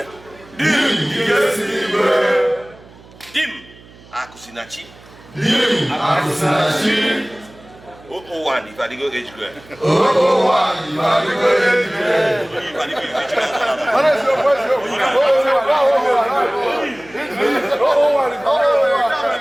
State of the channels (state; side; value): noise; right; hum, 23 dB below the sound